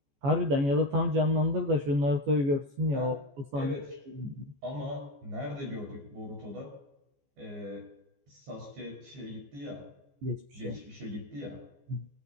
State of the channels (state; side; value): late; left; 14 ms